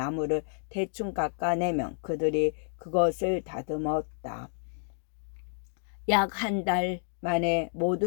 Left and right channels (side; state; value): right; silent; digital silence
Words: 대충 깎아내면 그들이 그것을 다듬었다. 약 한 달 만에